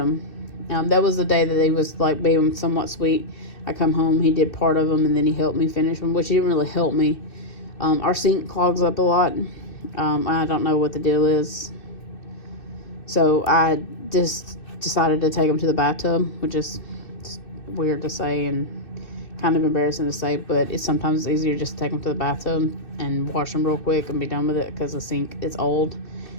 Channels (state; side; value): late; right; 2.6 ms